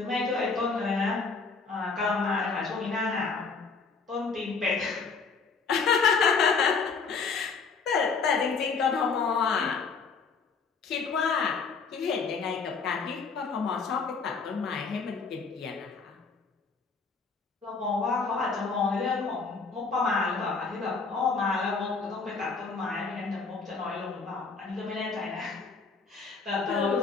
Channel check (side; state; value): right; quieter; 4.8 dB